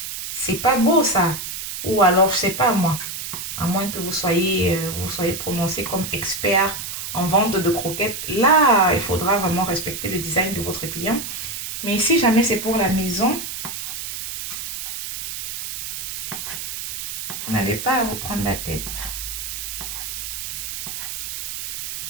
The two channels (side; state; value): right; noise; hiss, 6 dB below the sound